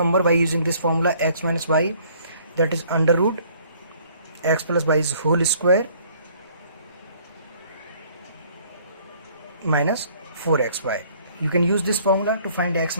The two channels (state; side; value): inverted; both; correlation -0.59